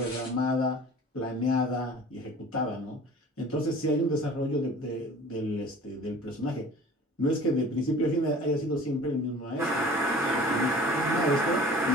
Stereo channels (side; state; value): both; normal; correlation 0.44